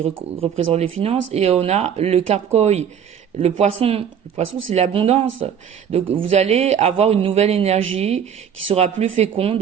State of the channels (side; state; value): left; quieter; 8.2 dB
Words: représente les finances et on a le carcoï, le poisson. Le poisson, c'est l'abondance. Donc, vous allez avoir une nouvelle énergie qui sera plus